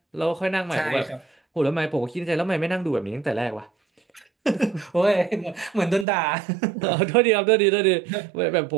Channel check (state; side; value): drops out; left; at 6.1 s